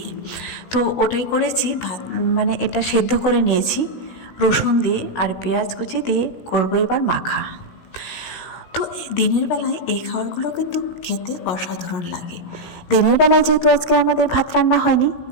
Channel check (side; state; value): right; late; 17 ms